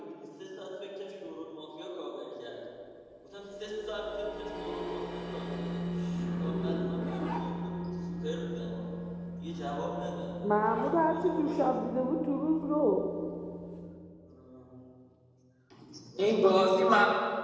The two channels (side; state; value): both; identical; correlation 1.00